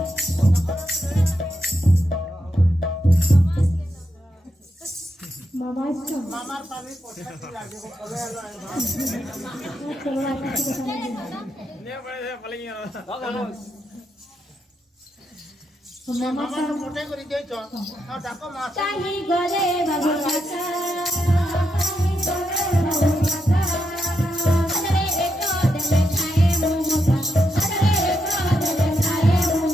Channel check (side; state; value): both; normal; correlation 0.83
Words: মামার পানি পছন্দ লাগে কবে এলো মামা তো মোটে করে দিয়েছ আর ডাকো মাছ कहीं गले बाबू माता कहीं गले बाबू माता हजरे एक देले खाए मोगा हजरे एक देले खाए